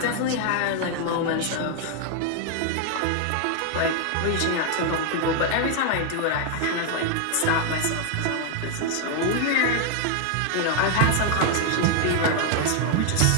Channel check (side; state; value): both; different; correlation 0.00